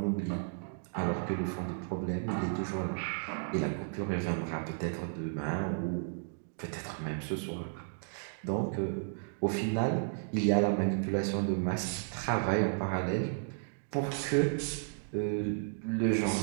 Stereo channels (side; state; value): left; silent; digital silence